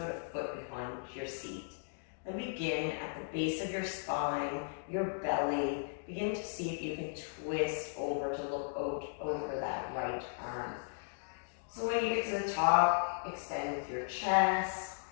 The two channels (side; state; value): right; silent; digital silence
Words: a foot behind your seat. Then begin at the base of your spine, your belly. Begin to see if you can twist over to look out over that right arm. So when you get to the top, extend with your chest.